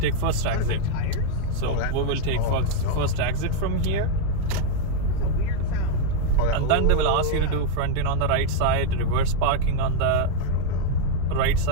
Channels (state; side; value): different; both; correlation 0.00